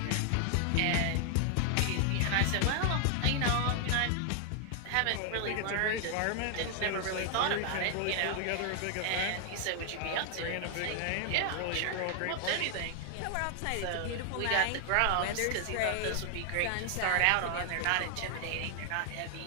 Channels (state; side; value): different; both; correlation 0.00